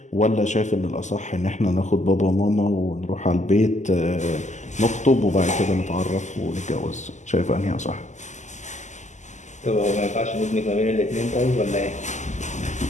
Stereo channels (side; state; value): right; late; 0.34 ms